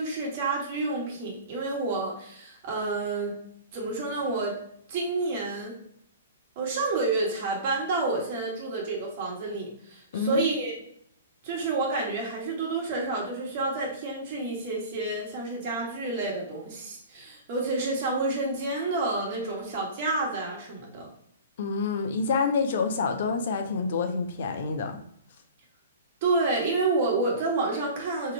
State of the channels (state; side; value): inverted; both; correlation -0.37